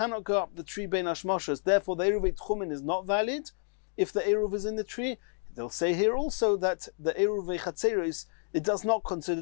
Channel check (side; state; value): right; silent; 58 dB below the other